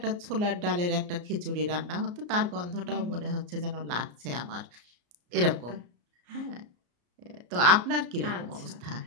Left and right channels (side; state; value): left; late; 34 ms